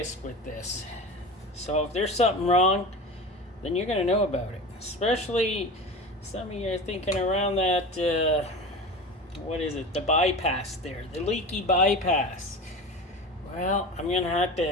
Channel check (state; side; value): normal; both; correlation 0.31